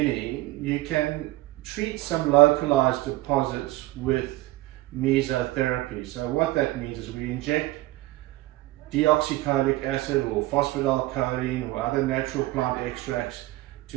you can treat some localized deposits with mesotherapy. So what that means is we inject deoxycholic acid or phosphatidylcholine or other natural plant extracts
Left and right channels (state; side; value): quieter; left; 18.6 dB